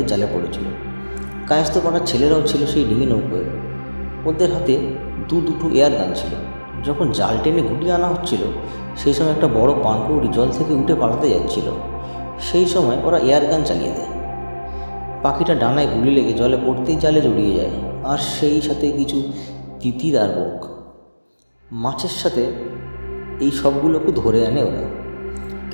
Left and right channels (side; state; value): both; inverted; correlation -1.00